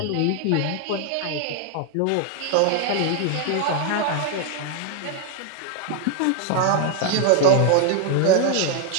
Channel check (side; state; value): both; different; correlation 0.00